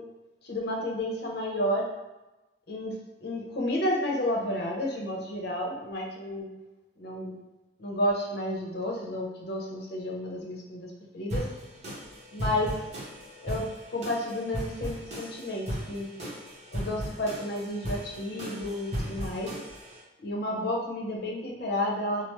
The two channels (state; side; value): normal; both; correlation 0.18